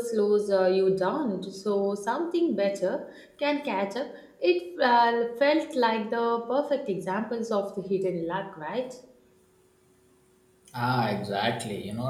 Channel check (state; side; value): identical; both; correlation 1.00